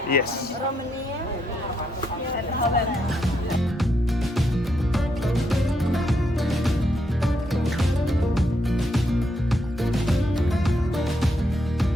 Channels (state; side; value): normal; both; correlation 0.78